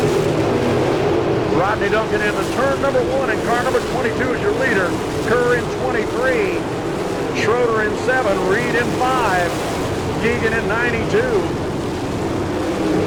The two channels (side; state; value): both; identical; correlation 1.00